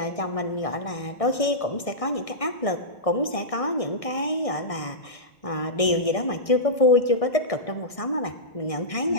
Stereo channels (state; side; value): late; right; 1.6 ms